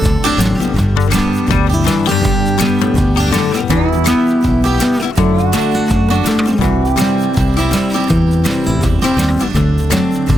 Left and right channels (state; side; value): normal; both; correlation 0.86